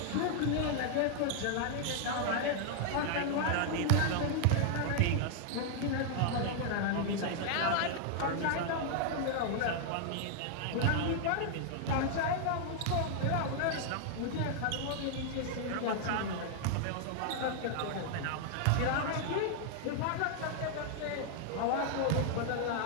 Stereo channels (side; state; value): both; different; correlation 0.00